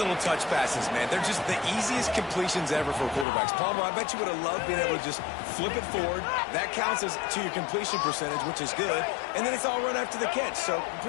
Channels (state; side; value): drops out; right; at 3.2 s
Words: touch passes, man, they're just the easiest completions ever for quarterbacks. Palmer, I bet you would have loved being able to just flip it forward. That counts as to your completion percentage, which is good. And then it's all run after the catch, so